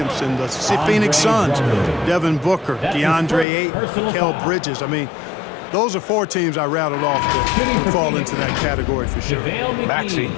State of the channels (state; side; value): drops out; right; at 3.5 s